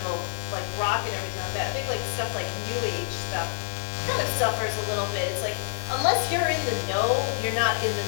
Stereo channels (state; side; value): silent; right; digital silence